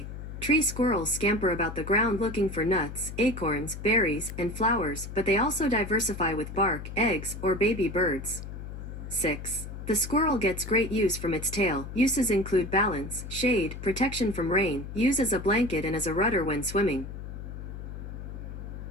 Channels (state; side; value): noise; left; hum, 9 dB below the sound